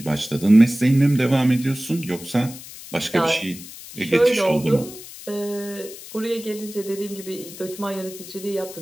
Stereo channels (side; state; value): left; noise; hiss, 15 dB below the sound